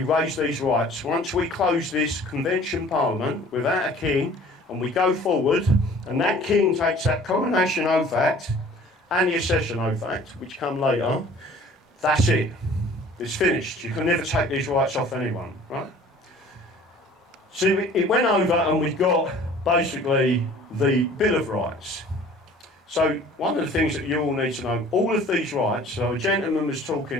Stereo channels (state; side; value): normal; both; correlation 0.49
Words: these rights. Once we close this convention parliament without a king, and we go forward, and that king takes that Coronation Oath Act, and the Accession Oath Act, which come later, that's it. It's finished. You can never take these rights off anyone, right? So it went over and we got basically the Bill of Rights. So one of the things that you all need to know, all of these rights, so a gentleman was talking